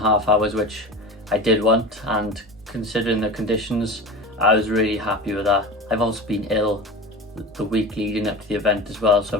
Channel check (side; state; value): both; normal; correlation 0.30